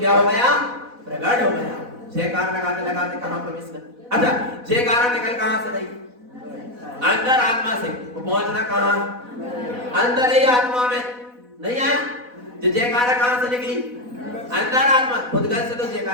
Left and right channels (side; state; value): left; late; 4.1 ms